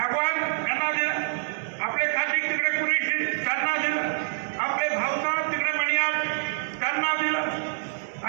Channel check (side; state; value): left; silent; digital silence